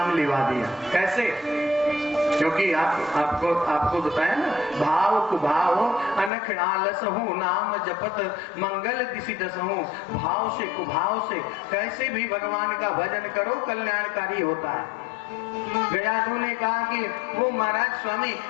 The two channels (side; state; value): right; drops out; at 6.3 s